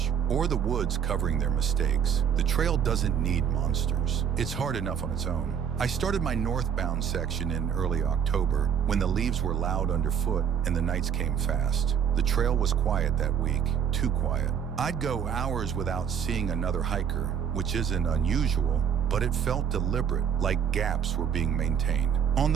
or the woods covering their mistakes. The trail doesn't need monsters. It's hard enough on its own. I started my northbound section in early October when the leaves were loud underfoot and the nights came fast. The trail was quiet that week, too quiet. I'd go hours without seeing another hiker, which isn't unusual, but it felt deliberate, like gaps were being maintained. On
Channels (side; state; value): left; quieter; 8.1 dB